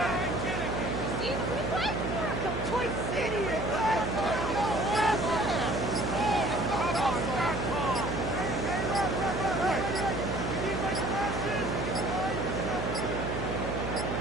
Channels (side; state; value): right; noise; hum, 3 dB below the sound